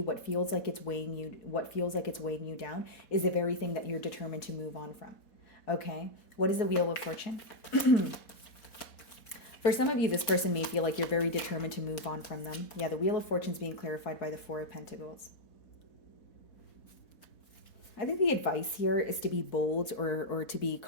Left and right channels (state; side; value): late; right; 4.1 ms